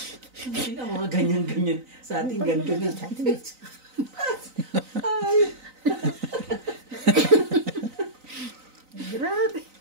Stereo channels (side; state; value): left; late; 3.9 ms